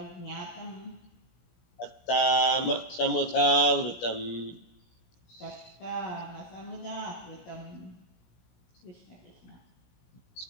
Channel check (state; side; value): late; right; 17 ms